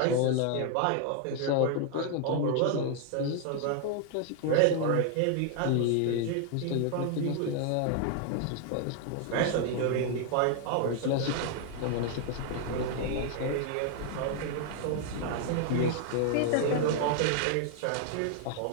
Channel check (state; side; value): different; both; correlation 0.00